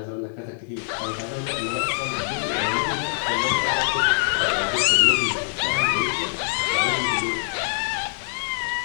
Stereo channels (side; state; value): right; silent; digital silence